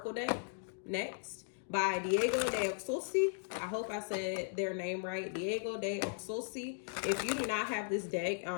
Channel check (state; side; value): silent; right; digital silence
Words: deck next by Diego de Oxosi. I hope I said their name right. Diego de Oxosi. If you do not have this deck